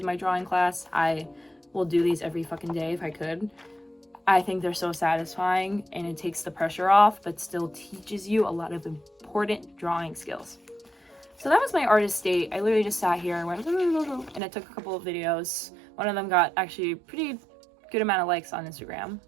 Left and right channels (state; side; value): drops out; left; at 14.4 s